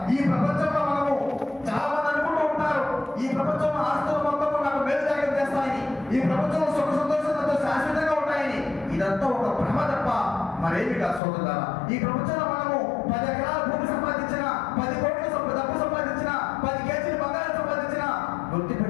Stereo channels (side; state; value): right; drops out; at 11.2 s